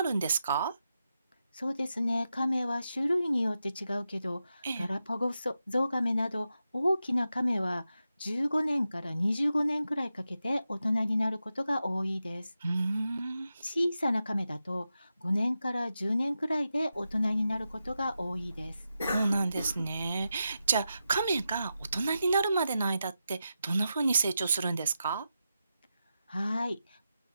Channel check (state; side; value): inverted; both; correlation -0.89